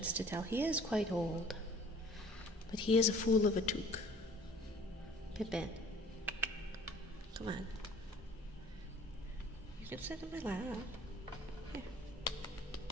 to tell. He is quite old. But he is a fool of a toque. Pippin. Come on. You can sit in my lap. Here.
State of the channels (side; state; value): both; normal; correlation 0.51